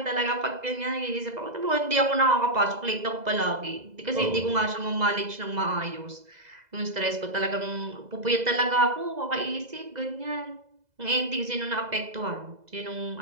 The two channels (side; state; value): left; late; 2.0 ms